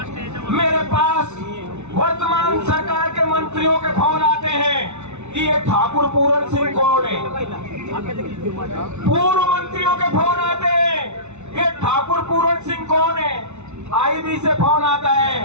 मेरे पास वर्तमान सरकार के मंत्रियों के फोन आते हैं कि ये ठाकुर पूरन सिंह कौन है। पूर्व मंत्रियों के फोन आते हैं, ये ठाकुर पूरन सिंह कौन है। आईबी से फोन आता है,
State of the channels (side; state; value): left; late; 0.82 ms